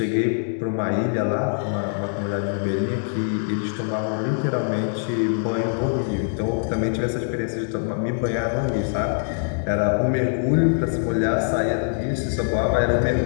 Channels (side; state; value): right; silent; digital silence